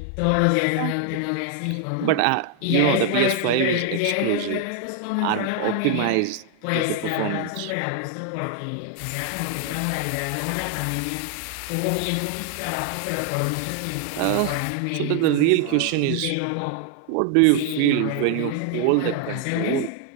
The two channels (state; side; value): different; both; correlation 0.00